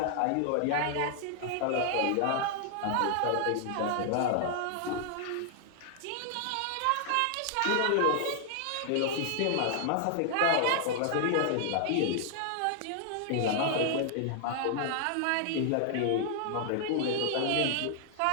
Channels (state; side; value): different; both; correlation -0.01